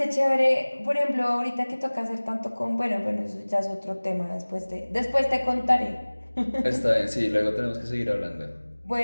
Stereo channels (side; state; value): both; inverted; correlation -1.00